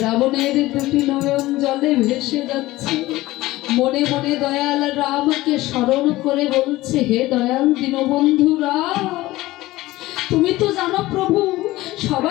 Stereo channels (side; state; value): right; quieter; 17.9 dB